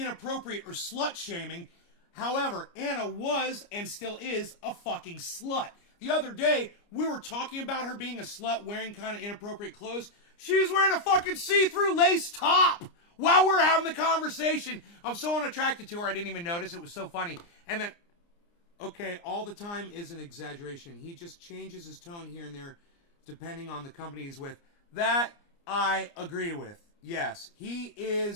or slut-shaming. However, Anna was and still is a fucking slut. The other day, we were talking about her being a slut, wearing kind of inappropriate clothes. She was wearing a fucking see-through lace top while we're having the conversation. I'm so unattracted to her, I didn't even notice. It was so funny. And then, okay, all the time is an exaggeration. He just changes his tone here and there depending on the company he's with. That I agree with. Yes, he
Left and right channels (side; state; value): right; late; 29 ms